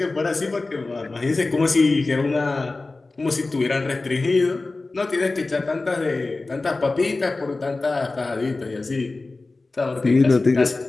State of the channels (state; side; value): quieter; right; 3.4 dB